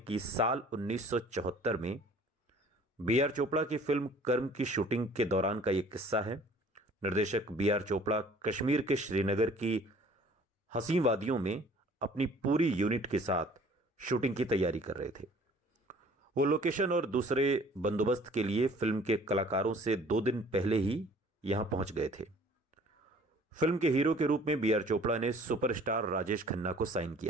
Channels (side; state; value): both; normal; correlation 0.52